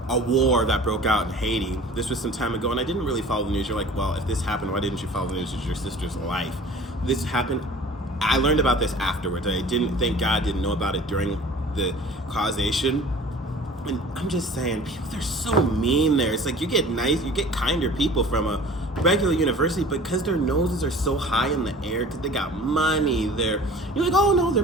a war that broke out in Haiti. This was some time ago, and I didn't really follow the news. You're like, well, if this happened, why didn't you follow the news? It's your sister's life. This happened. I learned about this afterwards. I didn't, thank God, didn't know about it during the causation. And I'm just saying, people, they're so mean there. It's like you get kinder people from a regular university, but because their noses are so high in the air, because they got money, you're like, oh no, they're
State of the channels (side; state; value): both; normal; correlation 0.45